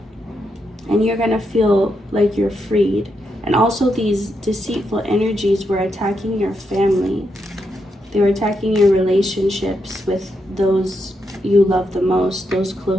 And you're going to feel like you're freed. And also these deceitful energies were attacking your family. They were attacking your relationships with those you love the most, those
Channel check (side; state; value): both; normal; correlation 0.82